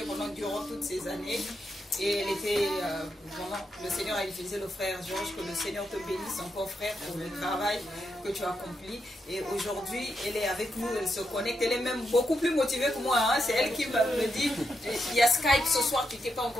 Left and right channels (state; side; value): normal; both; correlation 0.84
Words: durant toutes ces années. Et elle était vraiment, le Seigneur a utilisé le frère Georges, que le Seigneur te bénisse encore frère pour le travail que tu as accompli. Et aujourd'hui, elle est avec nous, elle se connecte, elle est même beaucoup plus motivée que moi. Hein. C'est elle qui me dit, il y a Skype ce soir, tu n'étais pas